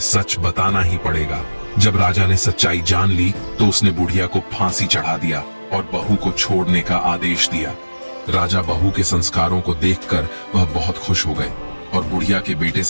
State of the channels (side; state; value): both; inverted; correlation -1.00